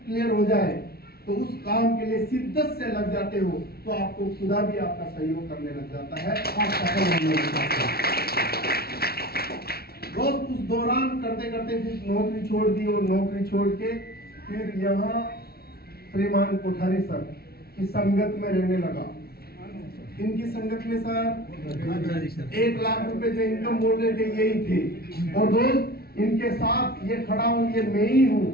क्लियर हो जाए तो उस काम के लिए शिद्दत से लग जाते हो तो आपको खुदा भी आपका सहयोग करने लग जाता है, आप सफल होने लग जाते हैं। दोस्त उस दौरान करते करते फिर नौकरी छोड़ दी और नौकरी छोड़ के फिर यहाँ श्रीमान कोठारी सर की संगत में रहने लगा। इनकी संगत में सर 1 लाख रुपए जो इनकम बोल रहे थे यही थे। और दोस्त इनके साथ ये खड़ा हूं, ये मैं ही हूं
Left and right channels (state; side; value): late; right; 0.45 ms